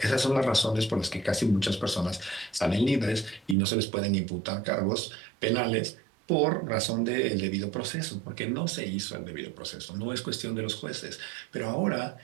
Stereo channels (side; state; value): left; drops out; at 3.6 s